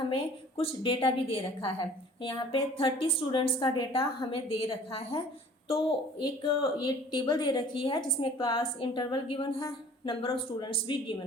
कुछ डेटा भी दे रखा है। यहाँ पे 30 स्टूडेंट्स का डेटा हमें दे रखा है। तो एक ये टेबल दे रखी है जिसमें क्लास इंटरवल गिवन है, नंबर ऑफ स्टूडेंट्स भी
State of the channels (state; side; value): normal; both; correlation 0.49